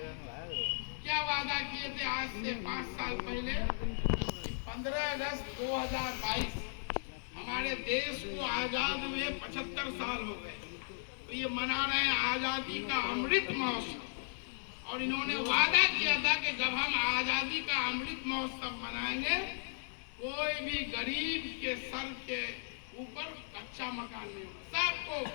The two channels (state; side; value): silent; right; digital silence